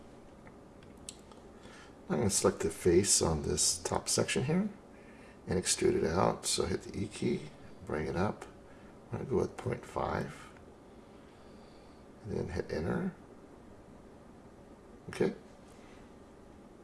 I'm going to select the face on this top section here and extrude it out. So hit the E key, bring it up. I'm going to go with 0.5. And then hit enter. Okay.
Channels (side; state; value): both; identical; correlation 1.00